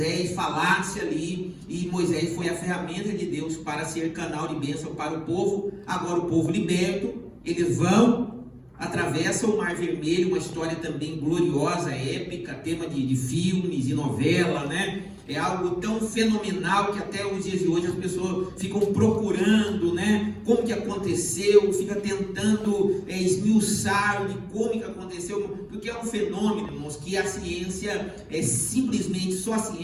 falasse ali, e Moisés foi a ferramenta de Deus para ser canal de bênção para o povo. Agora o povo liberto, eles atravessam o Mar Vermelho, uma história também gloriosa, épica, tema de filmes e novela, né? É algo tão fenomenal que até os dias de hoje as pessoas ficam procurando, né, como que aconteceu, fica tentando esmiuçar de como que aconteceu, porque é um fenômeno, irmãos, que a ciência simplesmente, só a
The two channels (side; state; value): both; identical; correlation 1.00